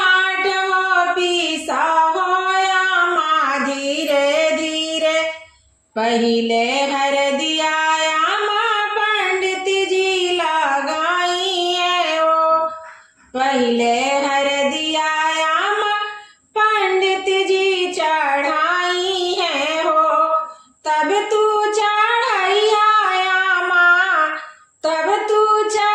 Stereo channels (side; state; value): both; identical; correlation 1.00